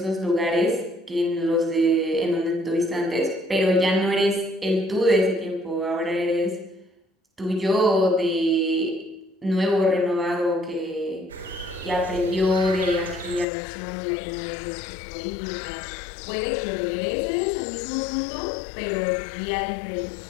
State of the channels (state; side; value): drops out; right; at 13.5 s